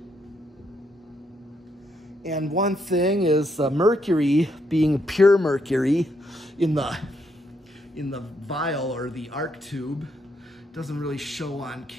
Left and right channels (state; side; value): normal; both; correlation 0.76